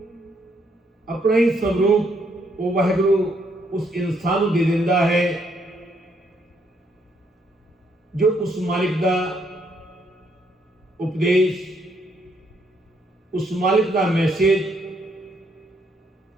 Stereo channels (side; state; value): both; normal; correlation 0.72